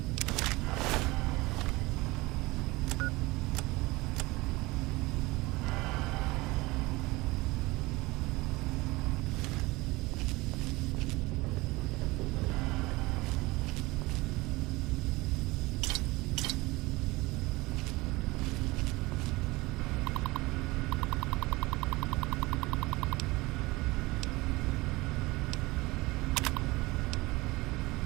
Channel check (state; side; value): quieter; left; 21.7 dB